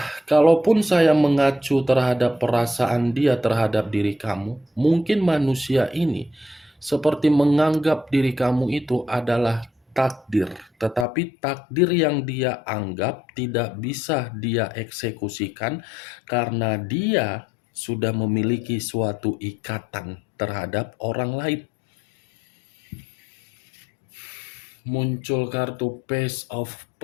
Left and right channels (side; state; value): right; drops out; at 11.1 s